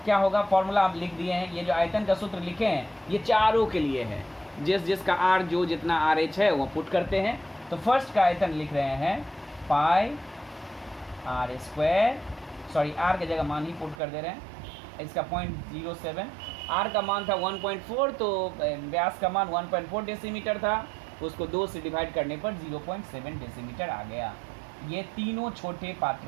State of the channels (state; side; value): drops out; left; at 14.0 s